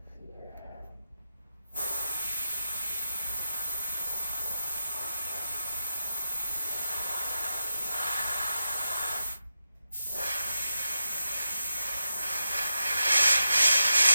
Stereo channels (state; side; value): inverted; both; correlation -0.87